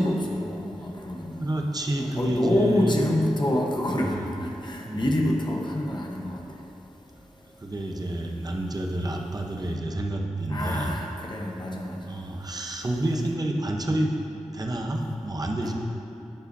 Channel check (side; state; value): both; normal; correlation 0.89